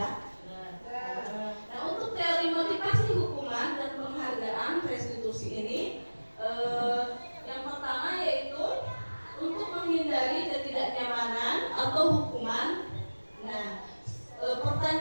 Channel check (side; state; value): both; inverted; correlation -1.00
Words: Nah, untuk teori motivasi hukuman dan penghargaan restitusi ini, yang pertama yaitu untuk menghindari ketidaknyamanan atau hukuman. Nah,